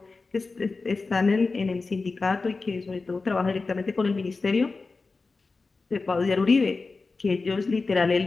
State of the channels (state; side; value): quieter; right; 4.0 dB